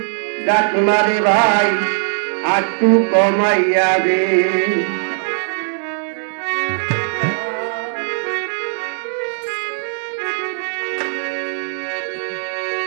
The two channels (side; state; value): left; silent; 66 dB below the other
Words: ডাকনারে ভাই আটটু কমাইয়া দে